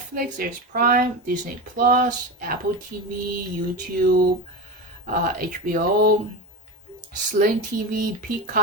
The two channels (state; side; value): normal; both; correlation 0.22